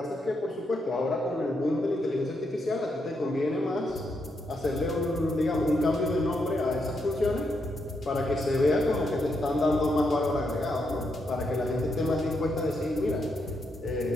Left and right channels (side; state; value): both; normal; correlation 0.80